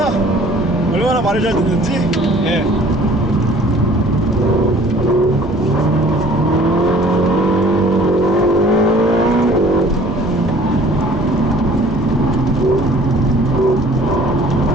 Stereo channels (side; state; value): both; normal; correlation 0.51